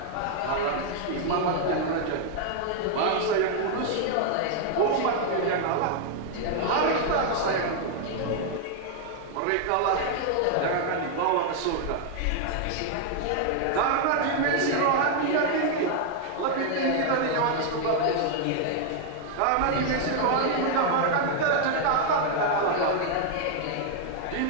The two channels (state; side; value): different; both; correlation 0.00